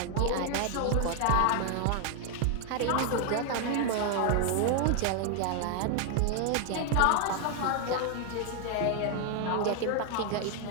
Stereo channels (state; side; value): different; both; correlation 0.00